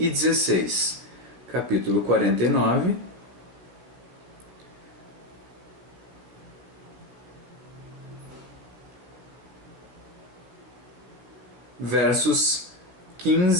16. Capítulo 49, versos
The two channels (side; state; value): left; late; 16 ms